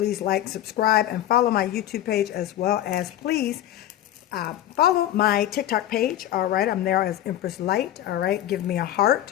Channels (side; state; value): right; quieter; 12.7 dB